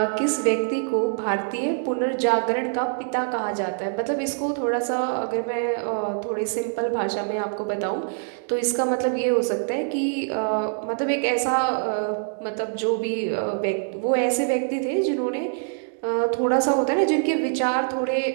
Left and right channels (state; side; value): silent; left; 62 dB below the other